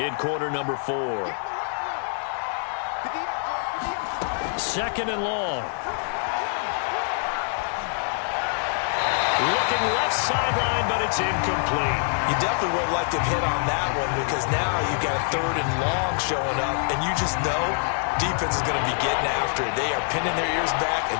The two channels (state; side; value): silent; right; 62 dB below the other